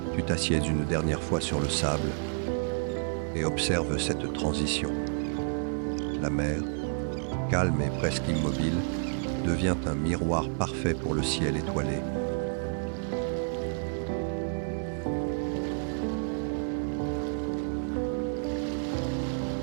Tu t'assieds une dernière fois sur le sable et observes cette transition. La mer, calme et presque immobile, devient un miroir parfait pour le ciel étoilé.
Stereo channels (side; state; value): left; silent; digital silence